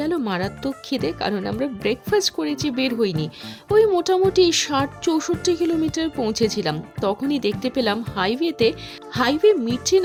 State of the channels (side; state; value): both; identical; correlation 1.00